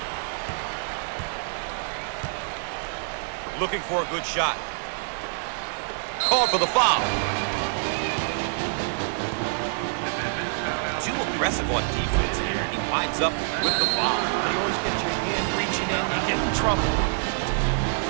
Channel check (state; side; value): silent; left; digital silence